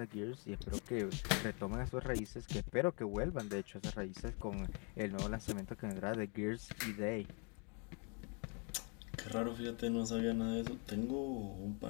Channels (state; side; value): quieter; right; 36.0 dB